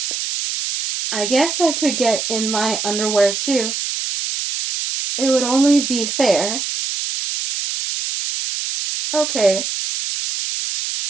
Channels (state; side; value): noise; right; hiss, 3 dB below the sound